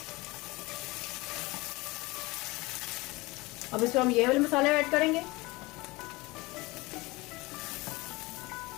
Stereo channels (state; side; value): quieter; right; 22.4 dB